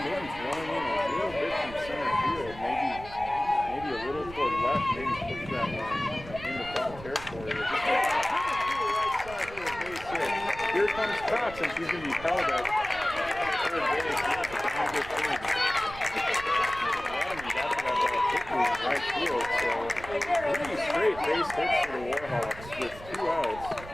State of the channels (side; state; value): right; noise; rumble, 15 dB below the sound